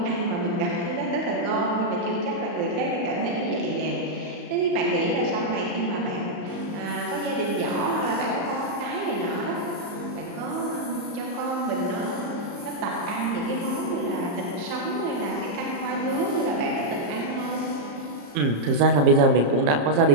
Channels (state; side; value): late; left; 34 ms